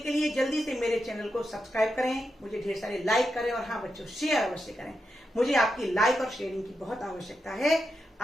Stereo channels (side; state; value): both; normal; correlation 0.87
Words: के लिए जल्दी से मेरे चैनल को सब्सक्राइब करें, मुझे ढेर सारे लाइक करें और हाँ बच्चों, शेयर अवश्य करें। मुझे आपकी लाइक और शेयरिंग की बहुत आवश्यकता है।